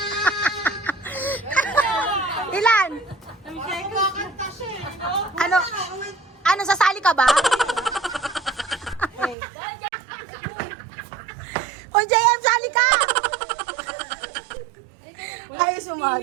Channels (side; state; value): left; drops out; at 9.3 s